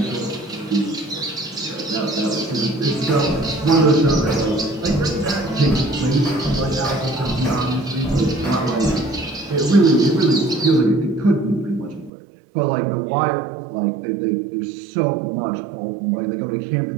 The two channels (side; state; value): left; drops out; at 12.1 s